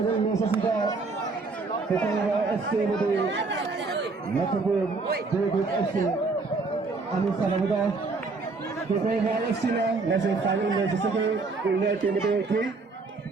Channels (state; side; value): quieter; left; 4.0 dB